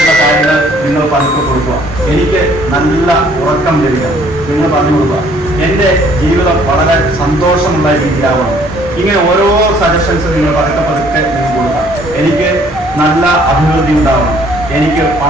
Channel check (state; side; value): normal; both; correlation 0.60